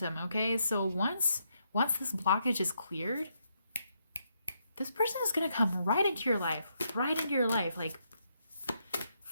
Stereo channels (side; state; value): both; inverted; correlation -0.78